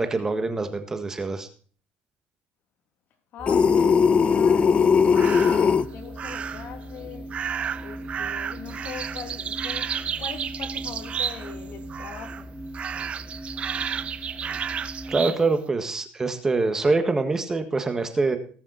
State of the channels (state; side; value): normal; both; correlation 0.77